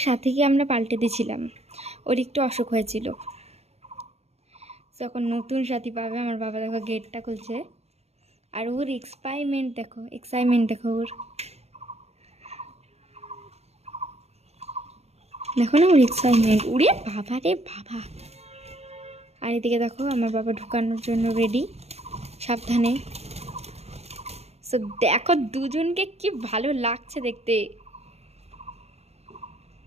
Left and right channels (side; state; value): left; late; 0.31 ms